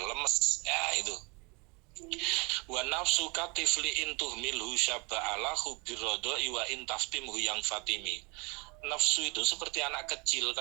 ya itu. Wa nafsu katifli intuh milhu syaba'alahu birrodoi wa intaftimhu yang fatimi. Nafsu itu seperti anak kecil,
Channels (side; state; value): left; quieter; 29.7 dB